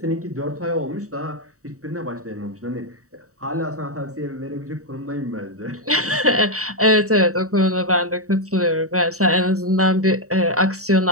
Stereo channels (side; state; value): left; late; 0.65 ms